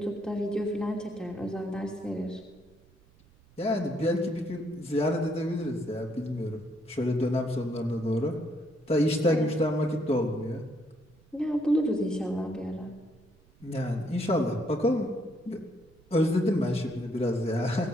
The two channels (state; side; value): noise; right; rumble, 29 dB below the sound